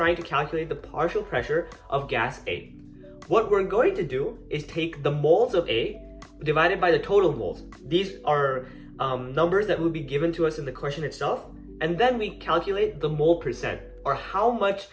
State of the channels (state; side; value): identical; both; correlation 1.00